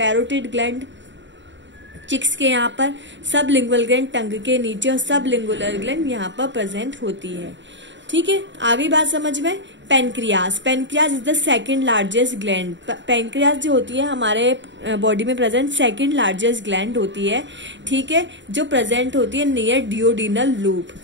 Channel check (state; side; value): late; left; 0.53 ms